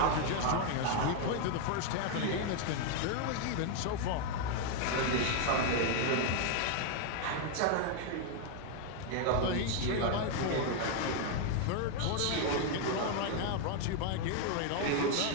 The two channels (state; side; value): different; both; correlation 0.00